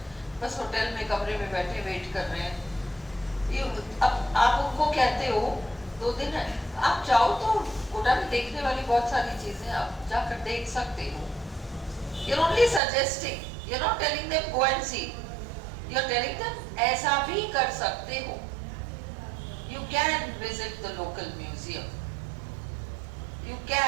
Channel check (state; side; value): drops out; left; at 12.8 s